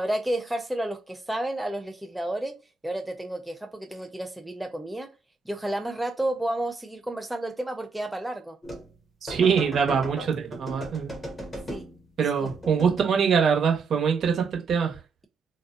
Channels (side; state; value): left; quieter; 4.7 dB